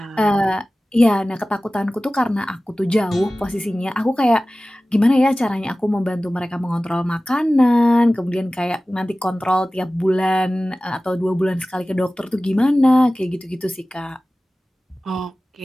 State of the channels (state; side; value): normal; both; correlation 0.97